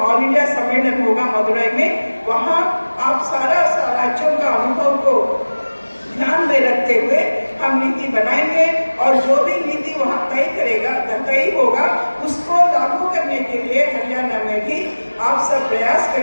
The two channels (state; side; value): inverted; both; correlation -1.00